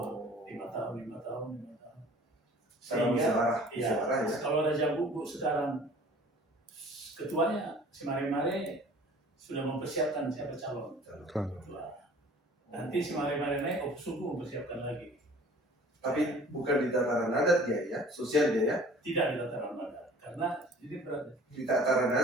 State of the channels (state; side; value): normal; both; correlation 0.48